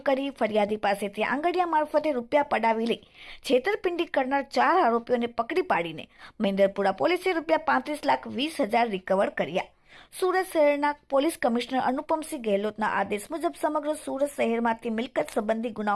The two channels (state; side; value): identical; both; correlation 1.00